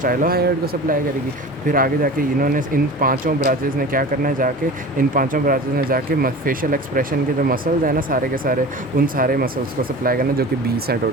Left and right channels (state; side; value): normal; both; correlation 0.36